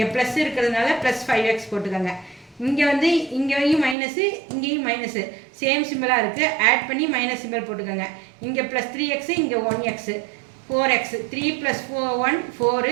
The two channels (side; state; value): left; drops out; at 4.0 s